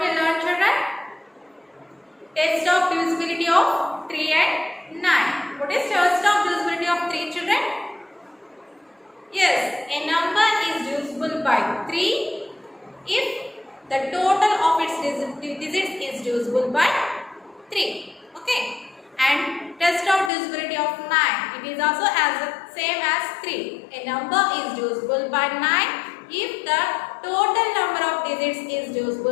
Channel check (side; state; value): right; drops out; at 20.3 s